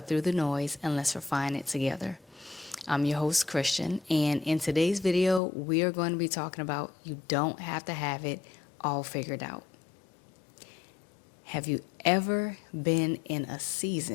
through the noise and let's refine it together. I'm your host, Christian, and in today's video, we are going to be talking about you don't have to have it all figured out. Have you ever been in a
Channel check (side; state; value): right; drops out; at 5.4 s